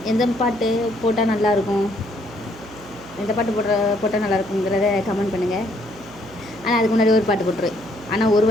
எந்த பாட்டு போட்டால் நல்லாயிருக்கும், எந்த பாட்டு போட்டால் நல்லாயிருக்குங்கிறத கமெண்ட் பண்ணுங்கள். ஆனால் அதுக்கு முன்னாடி ஒரு பாட்டு போட்டுருவேன். ஆனால் ஒரு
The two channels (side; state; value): right; noise; hum, 20 dB below the sound